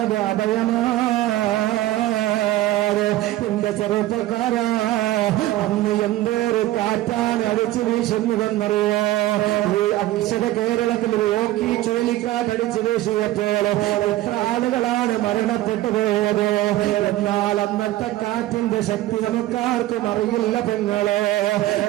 അഭയമാണ്. എന്റെ ചെറുപ്പക്കാരാ, അന്ന് എന്തൊരു കാറ്റാണ് അടിച്ചു വീശുന്നതെന്നറിയോ? ഈ അക്ഷര കേരളത്തിൽ യോക്കി ചുഴലിക്കാറ്റടിച്ചു വീശിയപ്പോൾ എത്ര ആളുകളാണ് മരണപ്പെട്ടു പോയത്. എന്നാൽ അന്നത്തെ കാറ്റിന്റെ ശക്തി നമുക്കാർക്കും അറിയില്ല പെങ്ങളെ.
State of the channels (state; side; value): quieter; left; 15.5 dB